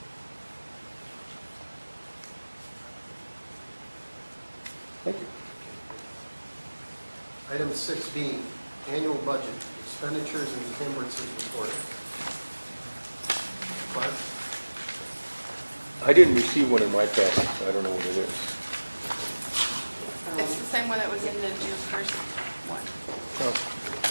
Thank you. Item 6B, annual budget, expenditures and encumbrances report. Clark? I didn't receive one in my package, so I don't know what it is. It's the same one that was in the June 1st one, Oh,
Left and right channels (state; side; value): inverted; both; correlation -1.00